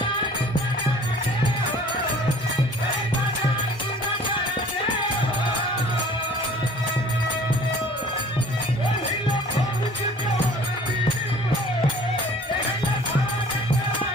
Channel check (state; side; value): normal; both; correlation 0.50